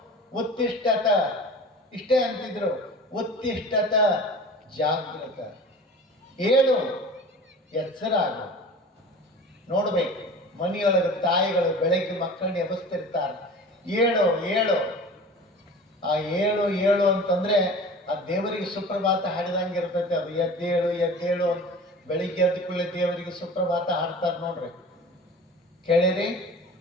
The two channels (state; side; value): normal; both; correlation 0.39